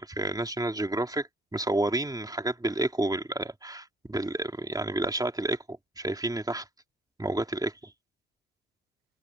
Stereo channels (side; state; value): both; normal; correlation 0.60